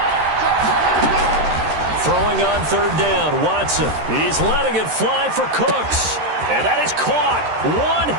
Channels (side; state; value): left; late; 13 ms